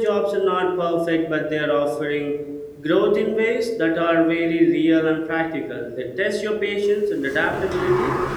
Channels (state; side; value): identical; both; correlation 1.00